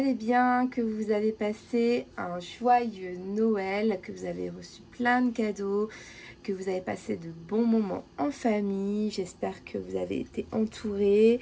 bien, que vous avez passé un joyeux Noël, que vous avez reçu plein de cadeaux, que vous avez passé de bons moments en famille. J'espère que vous avez été entourés.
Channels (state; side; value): identical; both; correlation 1.00